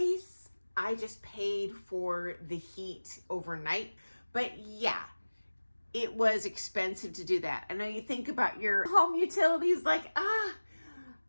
I just paid for the heat overnight. But yeah, it was expensive to do that. I know you think about your home utilities like,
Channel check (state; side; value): inverted; both; correlation -1.00